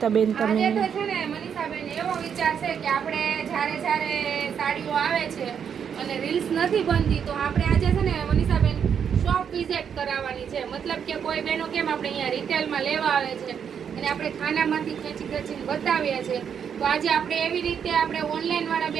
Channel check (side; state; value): left; quieter; 7.7 dB